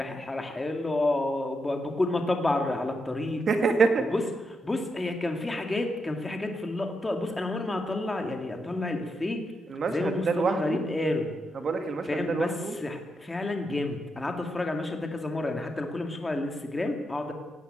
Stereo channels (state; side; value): normal; both; correlation 0.83